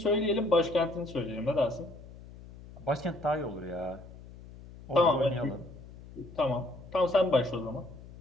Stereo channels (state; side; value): noise; left; hum, 17 dB below the sound